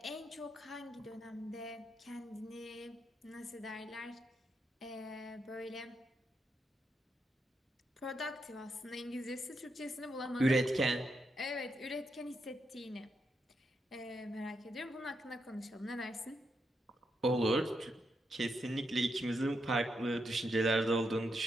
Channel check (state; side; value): normal; both; correlation 0.82